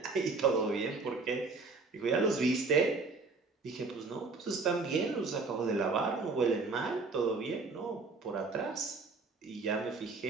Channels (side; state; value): left; quieter; 4.0 dB